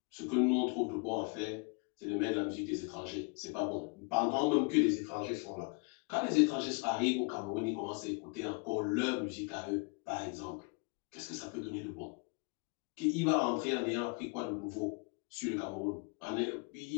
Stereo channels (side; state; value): right; quieter; 32.9 dB